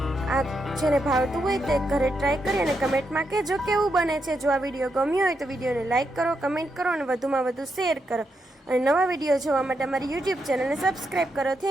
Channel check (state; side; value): normal; both; correlation 0.82